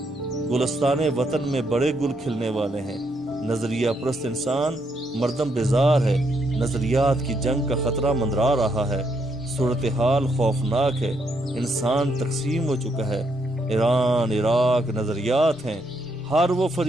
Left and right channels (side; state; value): both; normal; correlation 0.76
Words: گلستان وطن میں بڑے گل کھلنے والے ہیں۔ نظریہ پرست انسان مردم بیزار ہے، نظریات کی جنگ کا خطرہ مندرا رہا ہے۔ صورتحال خوفناک ہے، انسان تقسیم ہو چکا ہے۔ ایران، عراق نظریات ہیں، ہر وہ